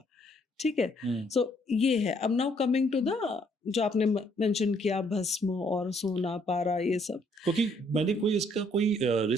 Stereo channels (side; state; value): both; normal; correlation 0.67